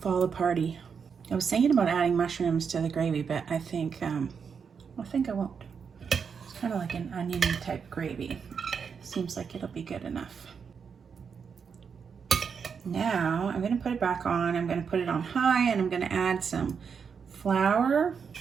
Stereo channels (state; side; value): quieter; left; 6.3 dB